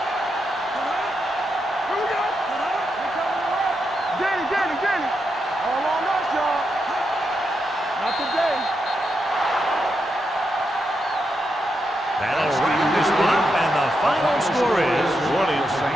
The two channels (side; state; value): both; normal; correlation 0.84